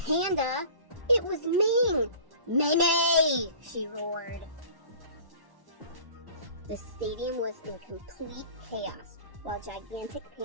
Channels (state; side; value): late; left; 1.1 ms